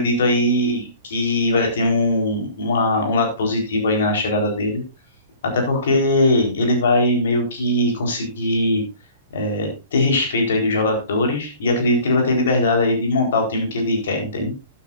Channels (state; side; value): inverted; both; correlation -0.50